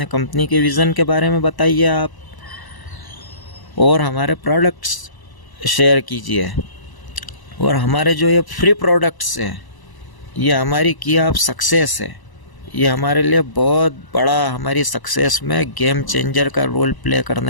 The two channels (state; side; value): late; right; 1.0 ms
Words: कंपनी के विज़न के बारे में बताइए आप, और हमारे प्रोडक्ट्स शेयर कीजिए। और हमारे जो ये फ्री प्रोडक्ट्स हैं, ये हमारी की आप सक्सेस है, ये हमारे लिए बहुत बड़ा, हमारी सक्सेस में गेम चेंजर का रोल प्ले